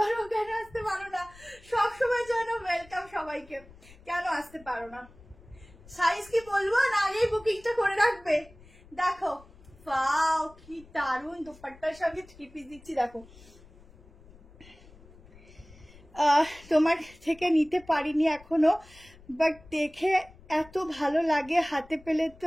কেন আসতে পারো না, সবসময় জন্য ওয়েলকাম সবাইকে, কেন আসতে পারো না। সাইজ কি বলবো না, আগেই বুকিংটা করে রাখবে। দেখো ওয়াও কি দারুণ, দোপাট্টার সঙ্গে 3 পিস দিচ্ছি। দেখো তোমার থেকে নিতে পারিনি এখনো, বাট দেখে এত ভালো লাগে, হাতে পেলে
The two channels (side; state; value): left; noise; rumble, 23 dB below the sound